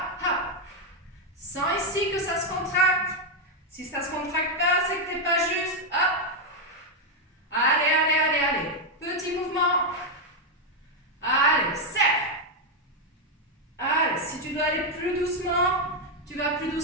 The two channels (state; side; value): normal; both; correlation 0.02